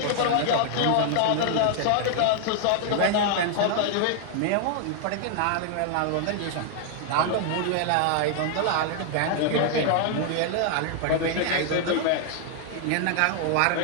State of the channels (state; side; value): different; both; correlation 0.00